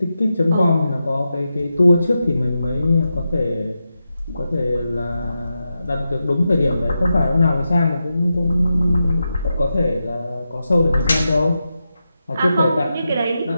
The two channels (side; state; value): both; inverted; correlation -0.89